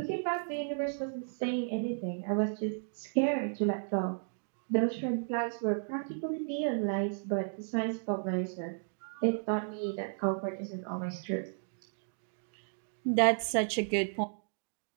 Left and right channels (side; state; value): left; silent; digital silence